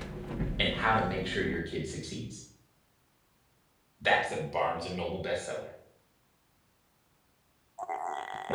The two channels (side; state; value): both; identical; correlation 1.00